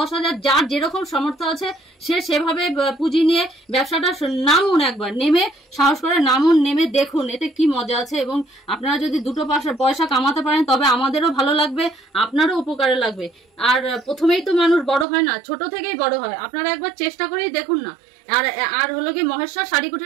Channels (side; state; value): left; drops out; at 15.1 s